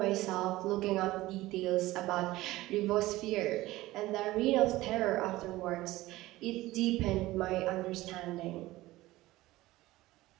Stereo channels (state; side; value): quieter; left; 17.8 dB